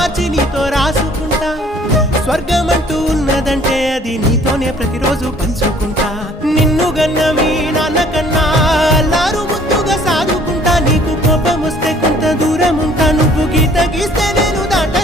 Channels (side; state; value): both; normal; correlation 0.56